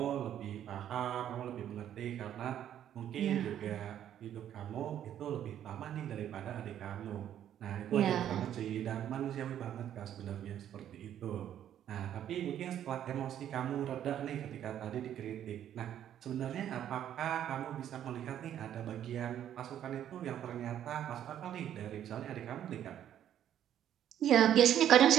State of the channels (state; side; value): quieter; left; 10.6 dB